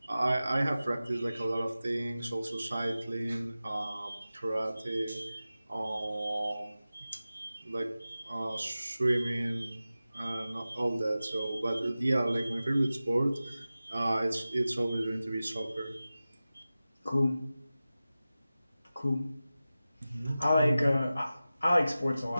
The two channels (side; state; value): both; inverted; correlation -0.95